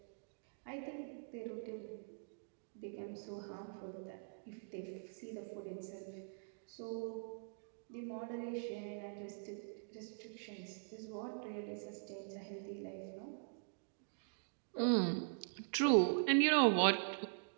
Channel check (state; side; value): silent; left; digital silence